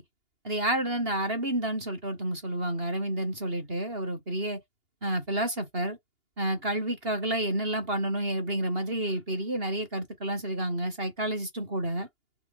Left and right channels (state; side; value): late; left; 2.8 ms